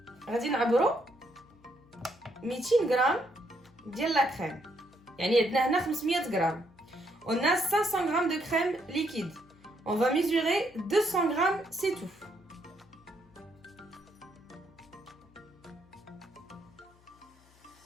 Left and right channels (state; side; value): noise; left; hum, 28 dB below the sound